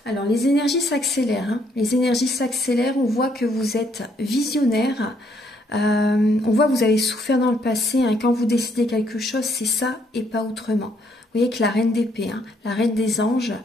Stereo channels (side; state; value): both; normal; correlation 0.70